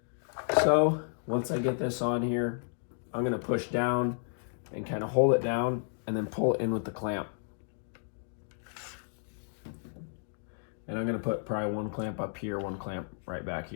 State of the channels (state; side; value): silent; right; 56 dB below the other